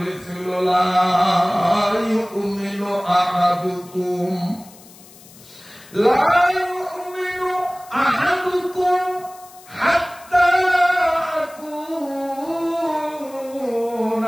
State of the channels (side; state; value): left; noise; hiss, 22 dB below the sound